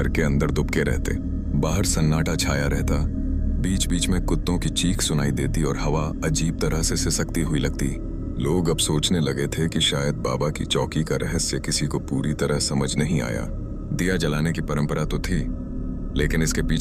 अंदर दुबके रहते। बाहर सन्नाटा छाया रहता। बीच बीच में कुत्तों की चीख सुनाई देती और हवा अजीब तरह से सिसकती हुई लगती। लोग अब सोचने लगे थे कि शायद बाबा की चौकी का रहस्य किसी को पूरी तरह समझ नहीं आया। दिया जलाने की परंपरा तो थी, लेकिन इसके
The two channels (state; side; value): identical; both; correlation 1.00